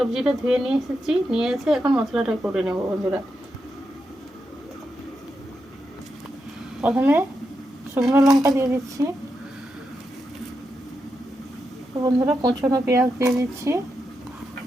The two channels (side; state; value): both; normal; correlation 0.86